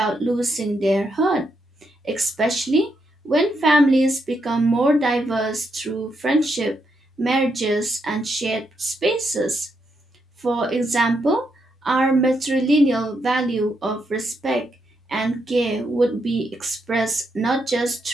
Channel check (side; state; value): both; normal; correlation 0.80